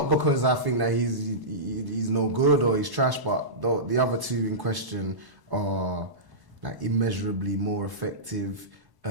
because I think that he's no good or he's trash, but the other two in question are like immeasurably more effective,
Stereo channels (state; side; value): late; left; 1.1 ms